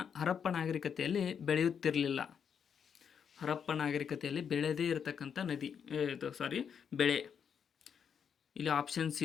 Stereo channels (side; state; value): right; quieter; 7.4 dB